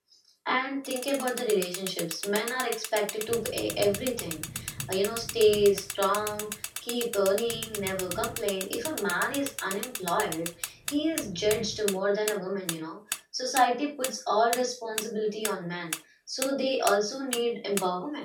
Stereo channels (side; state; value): both; identical; correlation 1.00